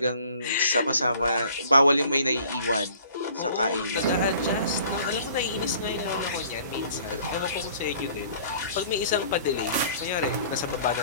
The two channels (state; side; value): inverted; both; correlation -0.52